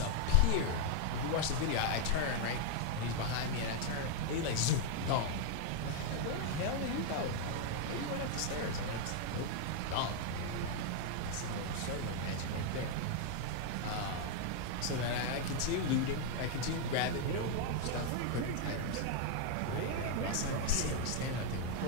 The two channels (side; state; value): both; different; correlation 0.00